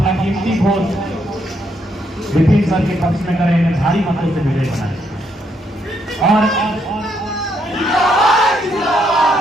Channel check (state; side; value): normal; both; correlation 0.75